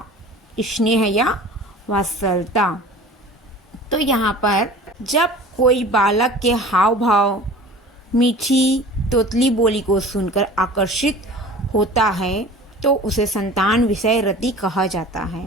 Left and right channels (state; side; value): normal; both; correlation 0.41